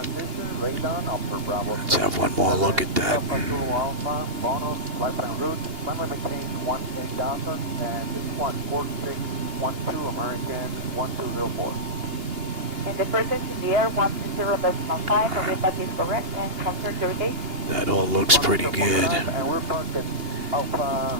radon, upper Bravo. Let's have one more look at that. Alpha Zulu Alpha, bonus, lifetime route, climate maintain 18,000, and this one 4612, American 1204. In the presence in the air, 120.5, and if that is correct, and confirm your gate. That all looks pretty good. And we're parked at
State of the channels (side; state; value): left; late; 2.8 ms